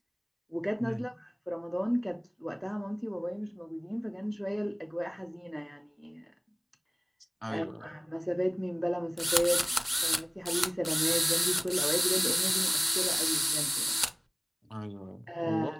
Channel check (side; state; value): both; identical; correlation 1.00